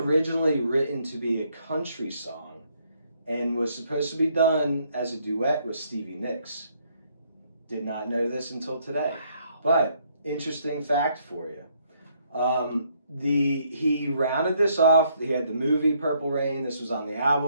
written to be a country song and was supposed to be done as a duet with Stevie Nicks. Did not know this until today. Wow. But interesting fact for you. He rounded this off. He had the movie Purple Rain. This was on the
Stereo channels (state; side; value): inverted; both; correlation -0.70